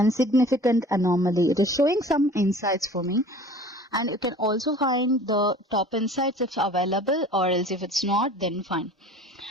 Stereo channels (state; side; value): normal; both; correlation 0.45